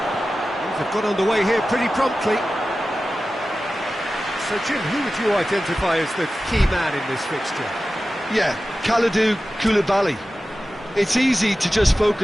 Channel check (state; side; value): normal; both; correlation 0.95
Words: Things have got underway here pretty promptly. So, Jim, who would you identify as the key man in this fixture? Yeah, Kalidou Koulibaly. It's easy to just